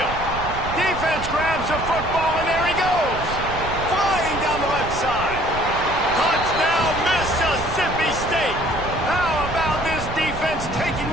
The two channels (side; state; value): right; noise; rumble, 9 dB below the sound